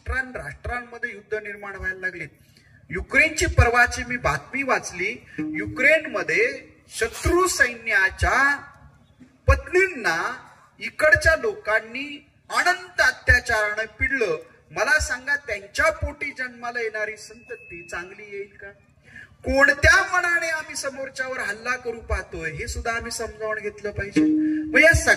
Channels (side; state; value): both; identical; correlation 1.00